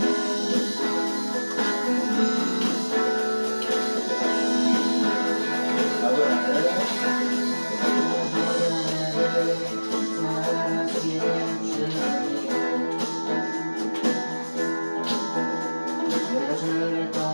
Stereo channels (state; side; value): inverted; both; correlation -1.00